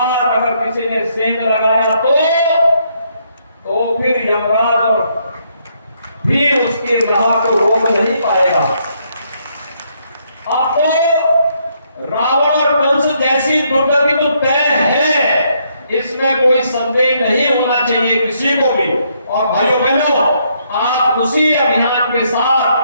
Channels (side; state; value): both; inverted; correlation -0.73